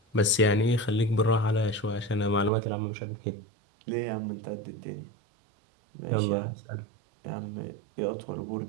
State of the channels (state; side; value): drops out; left; at 2.5 s